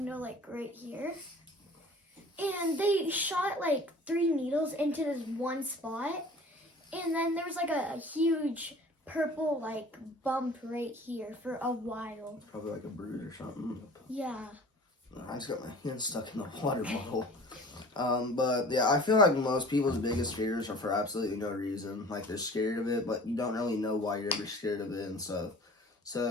like right here, and they shot like 3 needles into this one spot, and then there was like a huge purple like bump right here for a while. Probably like a bruise or something. Yeah. I just got my hand stuck in the water bottle. But yeah, I feel like most people's biggest fears are for absolutely no reason. Like, they're scared of it, but you don't really know why you're ever scared of it and stuff. So,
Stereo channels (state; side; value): normal; both; correlation 0.45